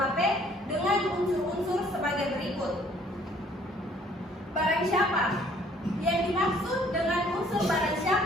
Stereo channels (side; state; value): both; normal; correlation 0.60